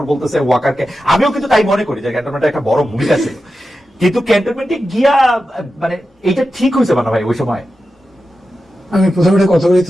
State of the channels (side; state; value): both; normal; correlation 0.91